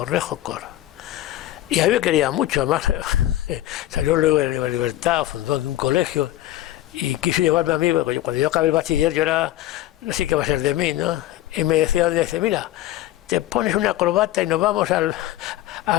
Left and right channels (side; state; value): right; quieter; 14.3 dB